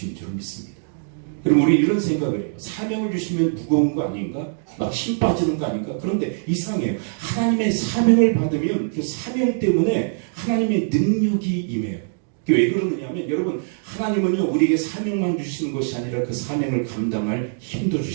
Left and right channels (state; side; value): silent; left; digital silence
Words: 줄 믿습니다. 여러분 우리 이런 생각을 해요. 사명을 주시면 무거운 거 아닌가? 막 힘 빠지는 거 아닌가? 그런데 이상해요. 하나님의 사명을 받으면 그 사명 때문에 하나님의 능력이 임해요. 왜 그러느냐면 여러분 하나님은요 우리에게 사명만 주시는 것이 아니라 그 사명을 감당할 힘도